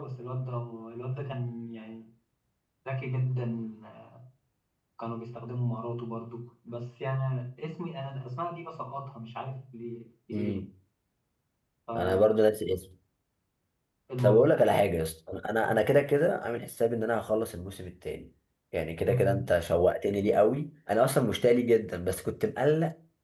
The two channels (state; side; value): identical; both; correlation 1.00